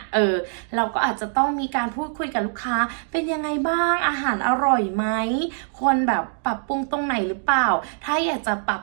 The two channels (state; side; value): silent; left; digital silence